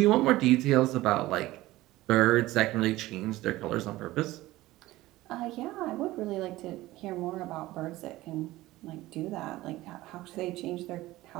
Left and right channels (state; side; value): quieter; left; 17.5 dB